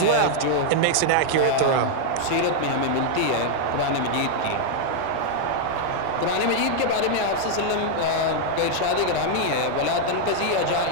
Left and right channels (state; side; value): different; both; correlation 0.00